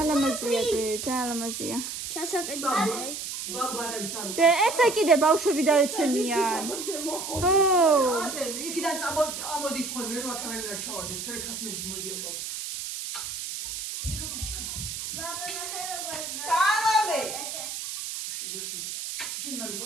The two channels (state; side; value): noise; right; hiss, 6 dB below the sound